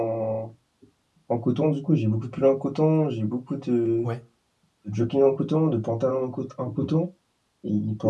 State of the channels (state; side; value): identical; both; correlation 1.00